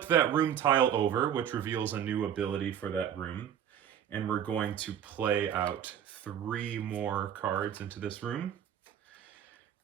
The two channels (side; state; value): left; quieter; 9.4 dB